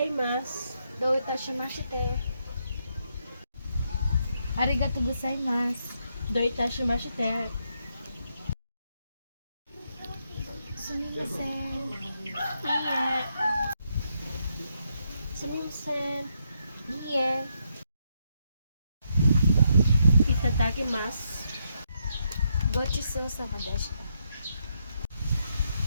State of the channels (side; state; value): both; inverted; correlation -0.79